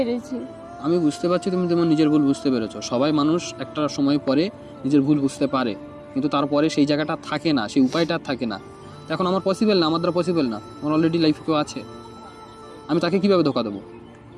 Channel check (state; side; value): identical; both; correlation 1.00